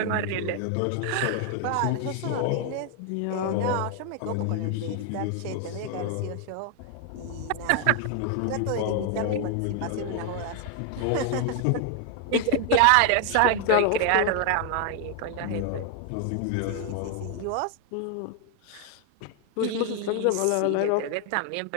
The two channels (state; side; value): different; both; correlation 0.00